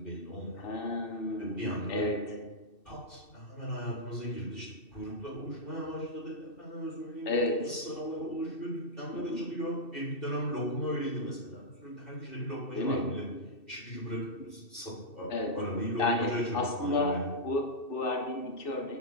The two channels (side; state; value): right; late; 2.7 ms